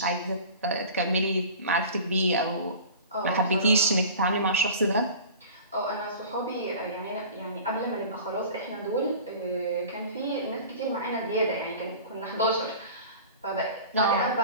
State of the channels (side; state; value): both; inverted; correlation -0.39